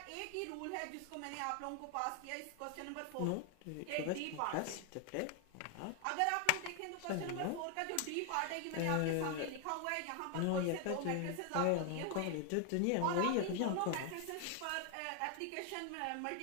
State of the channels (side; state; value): both; different; correlation 0.00